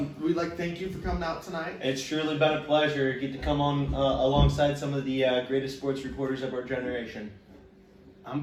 We'd like to thank you for coming out tonight. It's truly been a pleasure to get to come on alongside some of the greatest sports reporters of our generation.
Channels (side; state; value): both; identical; correlation 1.00